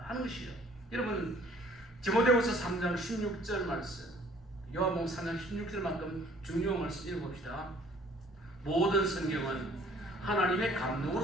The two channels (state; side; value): normal; both; correlation 0.56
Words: 하는 것이죠. 여러분 디모데후서 3장 16절 말씀 요한복음 3장 16절만큼 중요한 말씀 읽어봅시다. 모든 성경은 하나님의